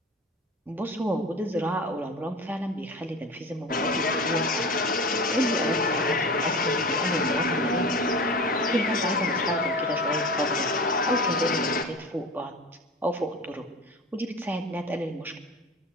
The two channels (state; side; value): normal; both; correlation 0.33